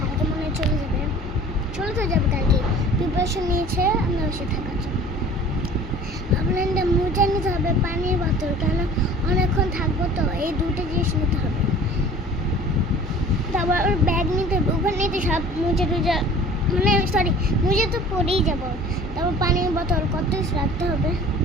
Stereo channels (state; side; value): normal; both; correlation 0.46